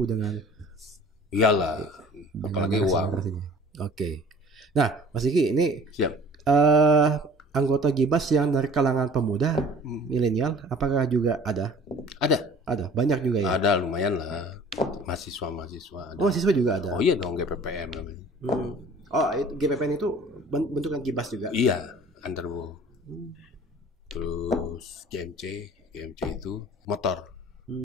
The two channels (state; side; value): normal; both; correlation 0.48